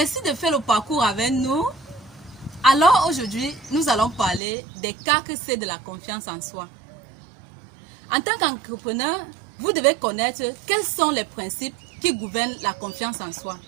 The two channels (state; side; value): drops out; left; at 4.4 s